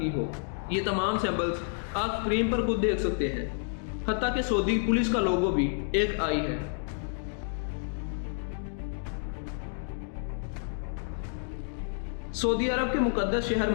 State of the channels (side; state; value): right; silent; 58 dB below the other